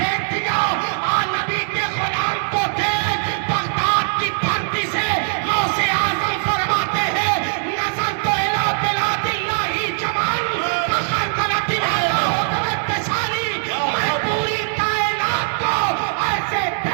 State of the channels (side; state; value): left; silent; digital silence